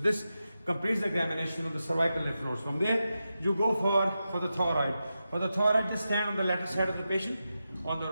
completes the examination of the cervical lymph nodes. From there, you go for the thyroid. For the thyroid, just stand on the lateral side of the patient, on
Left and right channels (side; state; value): both; inverted; correlation -0.90